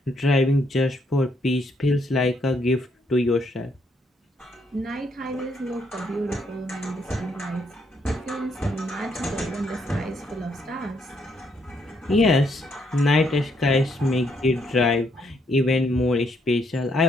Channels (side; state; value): both; normal; correlation 0.73